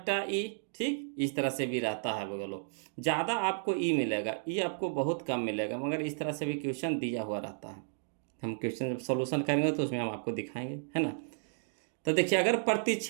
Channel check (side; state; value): left; silent; digital silence